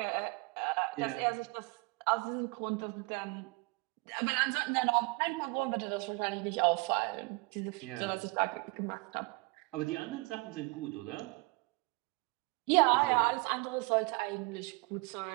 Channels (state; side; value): quieter; left; 27.0 dB